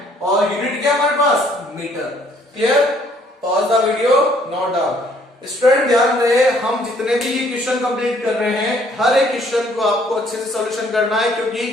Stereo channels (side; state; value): both; normal; correlation 0.63